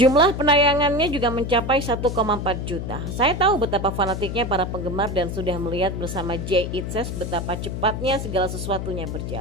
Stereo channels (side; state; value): left; noise; hum, 5 dB below the sound